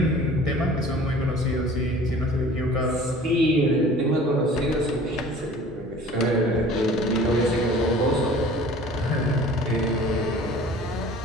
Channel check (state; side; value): normal; both; correlation 0.46